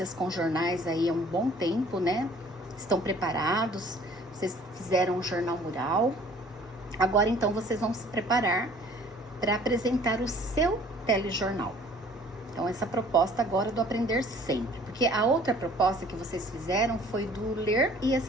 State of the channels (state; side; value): normal; both; correlation 0.53